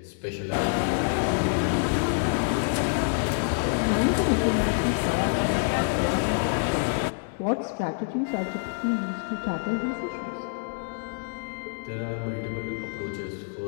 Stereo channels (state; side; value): silent; right; digital silence